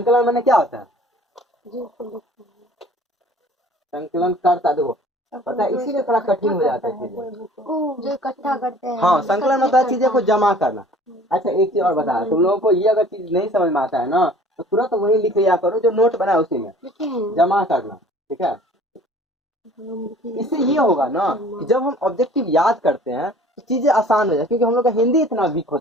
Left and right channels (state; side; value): normal; both; correlation 0.50